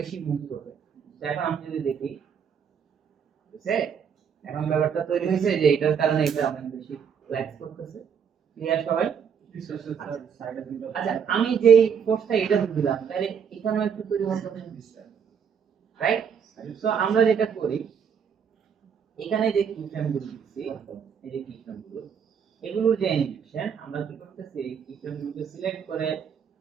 মুভ করবে। তো এখন আমি যদি দেখি, বুঝছে, এখন ব্যাপারটা তৈরি হয়েছে যে এটার কারণে এটা অনেক বেশি ফ্ল্যাক্স করতেছে, ক্লিয়ার সবাই? আচ্ছা, আমি যেই ফোর্সটা এটা দিলাম তাহলে এখানেও একটু পরিবর্তন হবে, রাইট? সো আমরা যেটা করি, এখানে যে কি ফ্রেমগুলো দিচ্ছি, এই যে কি ফ্রেমগুলো, এগুলোর যে অ্যানিমেশন আমরা কি করতেছি, এই কি ফ্রেমগুলোকে সিলেক্ট করে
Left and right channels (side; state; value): left; quieter; 7.3 dB